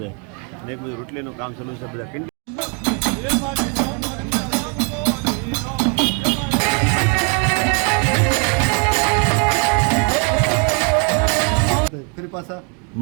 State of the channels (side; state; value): left; quieter; 36.2 dB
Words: અને એક બાજુ રોટલીનું કામ ચાલુ છે. બધા